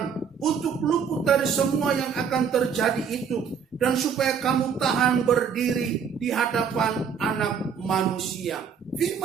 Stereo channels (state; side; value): quieter; left; 6.8 dB